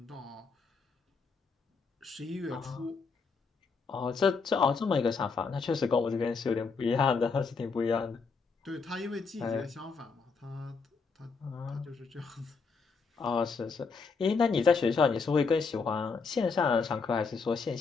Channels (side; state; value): right; quieter; 4.8 dB